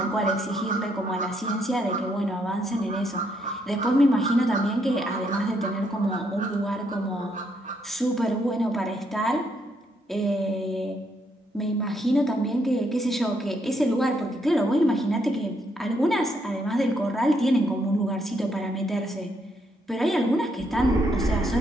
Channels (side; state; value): both; normal; correlation 0.74